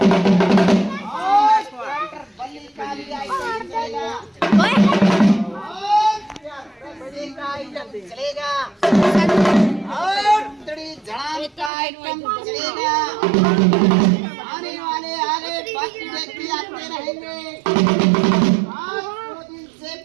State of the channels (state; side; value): drops out; left; at 11.7 s